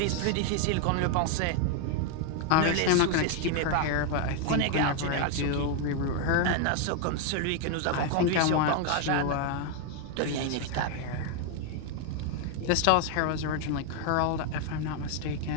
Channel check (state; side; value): different; both; correlation 0.01